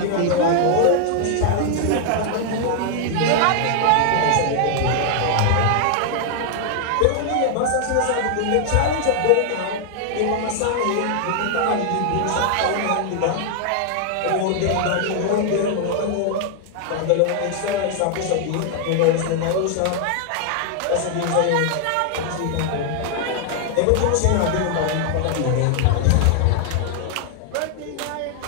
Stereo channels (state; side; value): different; both; correlation 0.00